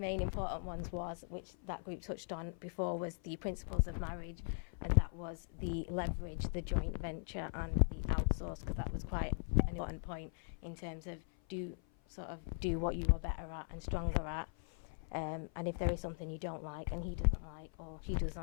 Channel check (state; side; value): silent; right; 51 dB below the other